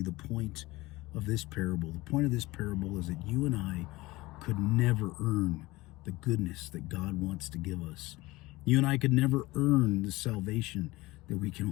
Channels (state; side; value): quieter; right; 20.3 dB